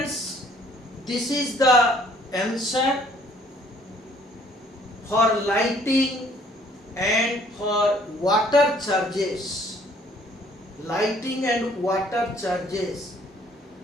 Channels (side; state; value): both; normal; correlation 0.60